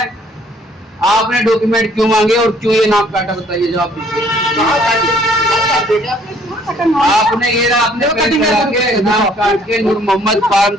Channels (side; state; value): both; normal; correlation 0.61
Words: आपने डॉक्यूमेंट क्यों मांगे और क्यों ये नाम काटा, बताइए जवाब दीजिए। आपने ये ना अपने के नाम काट के नूर मोहम्मद फार्म